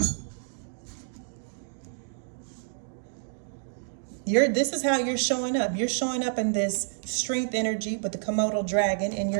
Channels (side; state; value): left; silent; digital silence